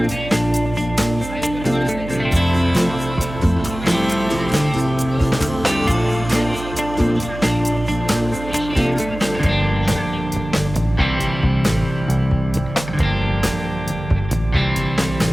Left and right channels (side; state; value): right; noise; hum, 11 dB below the sound